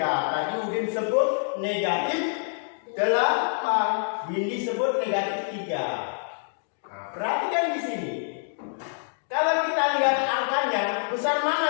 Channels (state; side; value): silent; right; 61 dB below the other